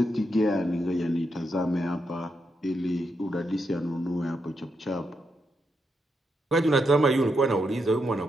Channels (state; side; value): normal; both; correlation 0.82